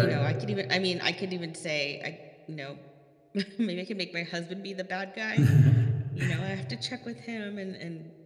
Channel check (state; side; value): identical; both; correlation 1.00